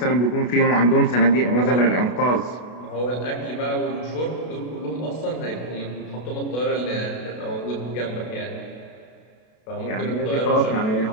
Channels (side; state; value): right; late; 32 ms